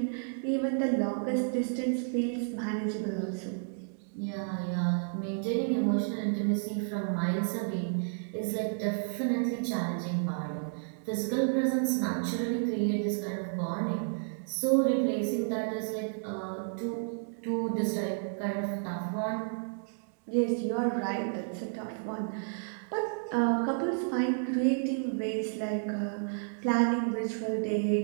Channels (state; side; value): silent; left; digital silence